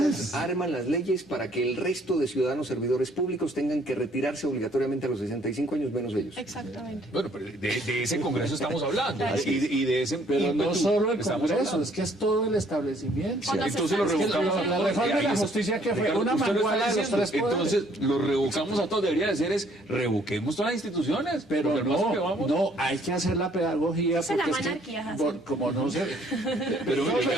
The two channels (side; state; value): both; normal; correlation 0.62